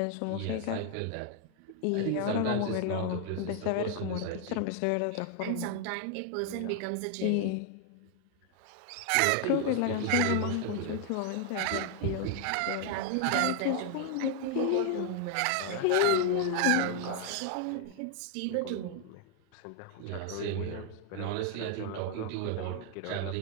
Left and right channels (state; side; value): different; both; correlation 0.00